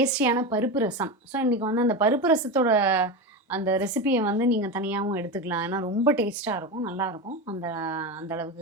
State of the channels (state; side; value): normal; both; correlation 0.19